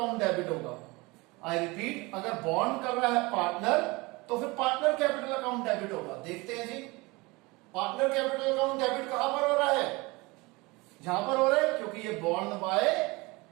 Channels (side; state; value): left; quieter; 24.2 dB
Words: डेबिट होगा। आई रिपीट, अगर बॉन्ड कर रहा है पार्टनर तो फिर पार्टनर कैपिटल अकाउंट डेबिट होगा। देखते हैं जी, पार्टनर कैपिटल अकाउंट डेबिट कहां पर हो रहा है? यहां पर हो रहा है क्योंकि ये बॉन्ड बाय